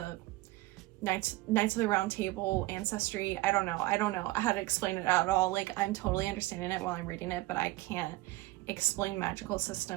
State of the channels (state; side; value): quieter; left; 19.0 dB